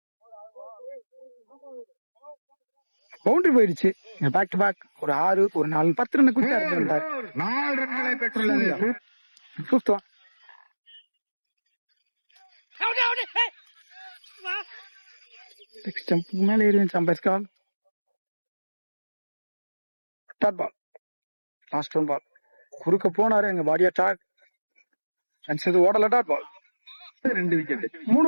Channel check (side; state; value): both; inverted; correlation -1.00